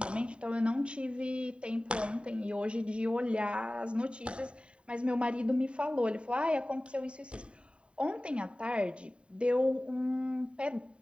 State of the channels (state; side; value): late; left; 0.055 ms